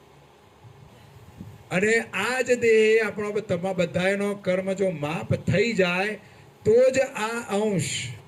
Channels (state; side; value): identical; both; correlation 1.00